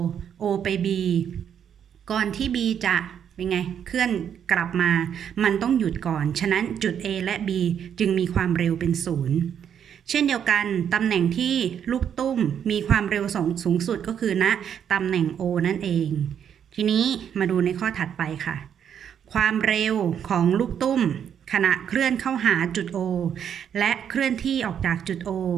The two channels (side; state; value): left; quieter; 8.6 dB